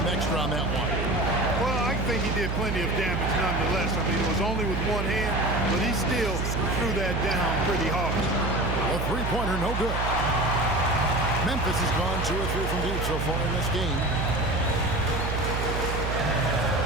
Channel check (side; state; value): right; noise; hum, 2 dB below the sound